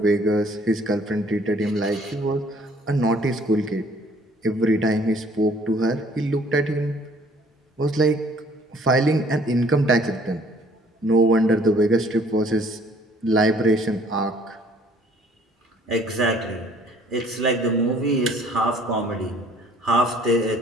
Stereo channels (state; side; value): normal; both; correlation 0.58